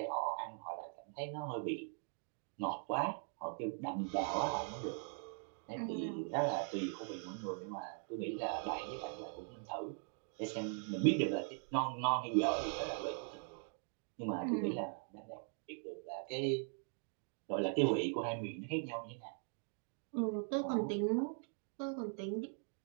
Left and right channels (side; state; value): left; silent; 50 dB below the other